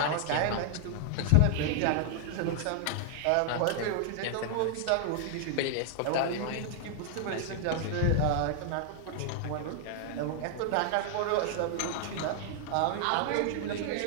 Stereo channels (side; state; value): both; different; correlation 0.00